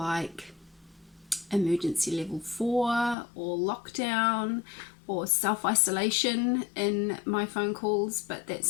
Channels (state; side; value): drops out; right; at 3.2 s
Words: emergency level 4 or lockdown or self-isolation in my phone calls, but that